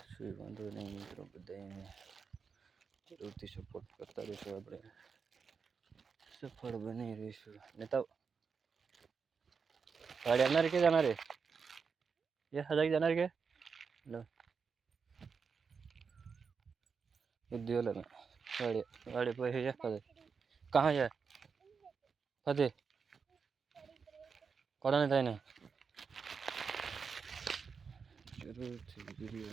શું વાંધો નહીં મિત્રો, બધાને જરૂરથી સપોર્ટ કરતા રહીશું, આપણે સફળ બની રહીશું. નેતા गाड़ी जाना के जाना रे ये हजार जाना के लो उद्योग में गाड़ी गाड़ी पे है फदे कहाँ जाए फदे कौन नहीं था ना जरूर थी वीडियो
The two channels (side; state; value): left; quieter; 5.7 dB